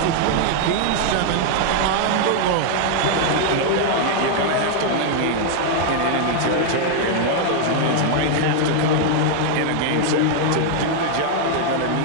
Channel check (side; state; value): both; different; correlation 0.00